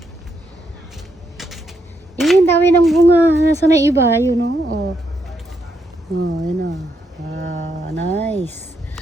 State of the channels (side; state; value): both; normal; correlation 0.79